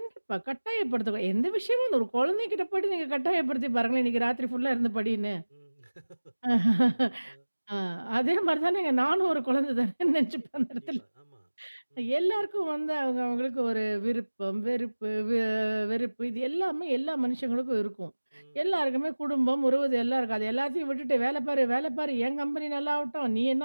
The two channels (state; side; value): inverted; both; correlation -1.00